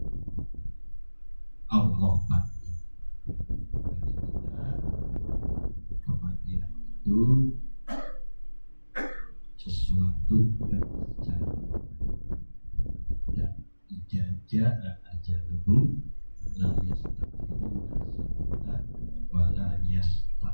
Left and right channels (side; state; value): both; inverted; correlation -1.00